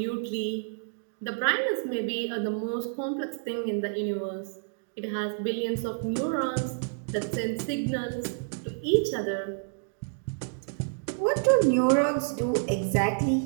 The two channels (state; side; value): silent; left; digital silence